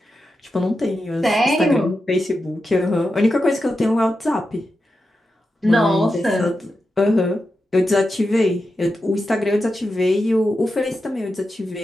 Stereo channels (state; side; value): normal; both; correlation 0.89